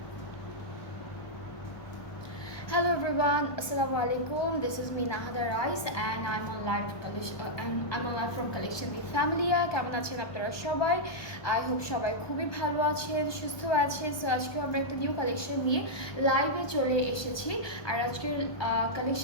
everyone, Assalamu alaikum. This is me Nahada Rais and I'm on live collection. I'm on live from Collection the Family. কেমন আছেন আপনারা সবাই? I hope সবাই খুবই ভালো আছেন, সুস্থ আছেন। সো আজকে আমরা একটা নিউ কালেকশন নিয়ে লাইভে চলে এসেছি। আর আজকের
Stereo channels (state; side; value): late; right; 1.2 ms